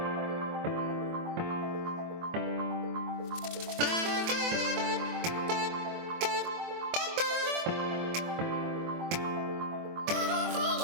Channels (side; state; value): left; late; 24 ms